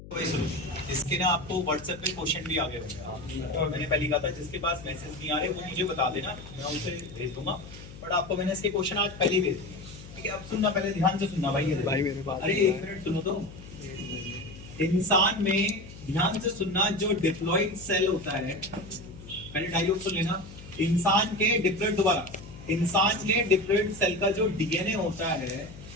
भाई सुनो, इसके ना आपको व्हाट्सएप पे क्वेश्चन भी आ गए होंगे। और मैंने पहले कहा था जिसके पास मैसेज नहीं आ रहे वो मुझे बता देना, मैं उसे भेज दूंगा। बट आपको मैंने इसके क्वेश्चन आज पहले ही भेज दिए, ठीक है। अब सुनना, पहले ध्यान से सुनना भाई। भाई मेरे पास अरे एक मिनट सुनो तो। इंसान में ध्यान से सुनना, जो डिप्लॉइड सेल होता है, पहले डायलॉग सुन लेना। इंसान के डिप्लॉइड, दोबारा, इंसान के डिप्लॉइड सेल का जो डीएनए होता है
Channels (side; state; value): left; noise; hum, 16 dB below the sound